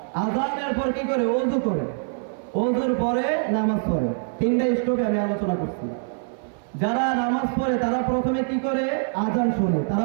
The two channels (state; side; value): silent; left; 62 dB below the other